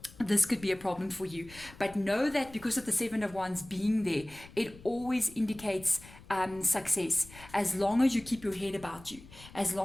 This could be a problem for you. But know that because of the Seven of Wands being there, it always indicates success. As long as you keep your head about you, as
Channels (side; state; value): left; noise; rumble, 20 dB below the sound